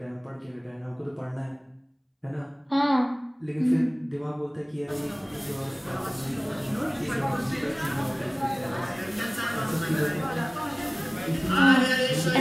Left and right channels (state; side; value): identical; both; correlation 1.00